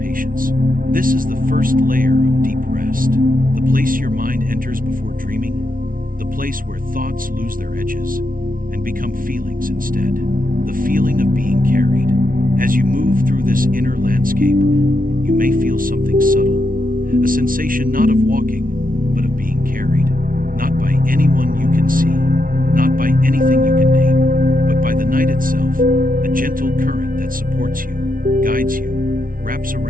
This is the first layer of deep rest, the place your mind enters before dreaming, the place where thoughts lose their edges and become feelings instead. The feeling of being carried. As you move through this inner landscape, you may feel something subtle, a sensation not of walking, but of being carried, not by anyone you can see, not by anything you can name, but by the night itself, a gentle current that supports you, guides you, wraps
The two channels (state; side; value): late; left; 0.41 ms